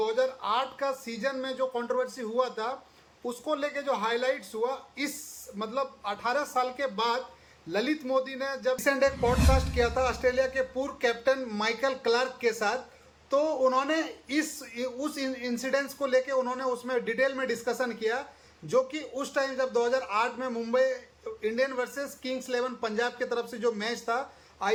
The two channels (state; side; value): identical; both; correlation 1.00